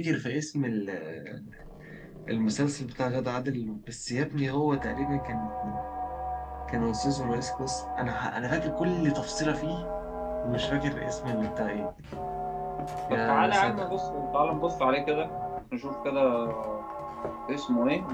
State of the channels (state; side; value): identical; both; correlation 1.00